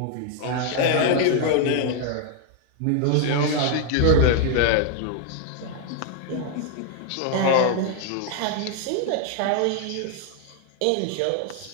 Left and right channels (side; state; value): both; different; correlation 0.00